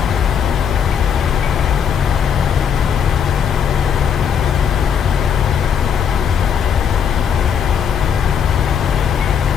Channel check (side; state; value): right; quieter; 7.6 dB